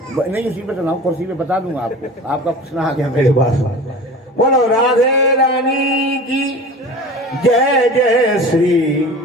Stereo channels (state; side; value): normal; both; correlation 0.37